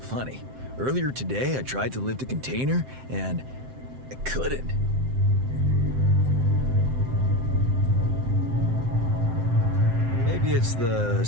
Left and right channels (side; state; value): left; late; 7.7 ms